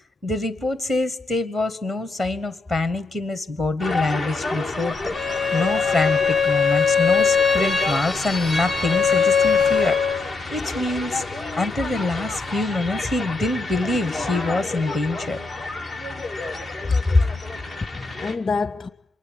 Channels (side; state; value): right; quieter; 3.6 dB